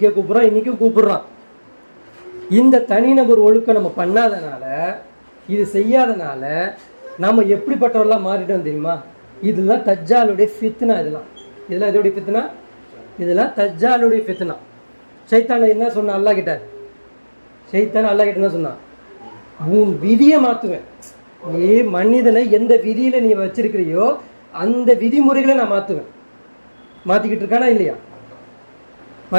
கூப்பிடுறான், இன்னைக்கும் கூப்பிடுறான். இந்த தனிநபர் ஒழுக்கம் நம்ம பண்ணாதனால, இது செய்யாதனால நம்ம எப்படிப்பட்டவர்களாக மாறிட்டோம் தெரியுமா? இதெல்லாம் தஜ்ஜாலுடைய ஃபித்னா. இதெல்லாம் எதோடைய ஃபித்னா? இதெல்லாம் தஜ்ஜாலுடைய ஃபித்னா. ஷைத்தான் என்ன சொன்னான் அல்லாஹ் கிட்ட? ஷைத்தான் அல்லாஹ் கிட்ட என்ன சொன்னான்? உன் விதியை மாற்றுவேன். நீ மனிதனை எந்த விதியில நீ வச்சிருக்கிறியோ அந்த விதிமுறைகளை நான் மாற்றுவேன். மாற்றிக்கிட்டு இருக்கானா இல்லையா?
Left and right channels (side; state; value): both; inverted; correlation -1.00